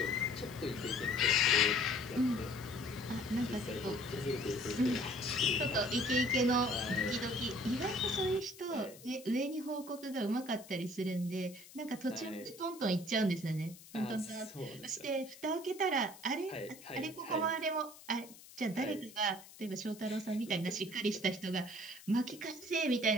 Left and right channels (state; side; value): noise; left; hiss, 19 dB below the sound